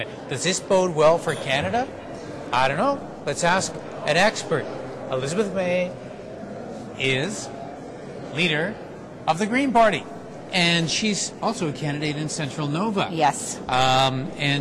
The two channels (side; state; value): both; identical; correlation 1.00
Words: Does this bode well for Canada? I don't know. Let's ask an expert. Elizabeth May is leader of the Green Party, and she's also a candidate in Central Nova. Yes.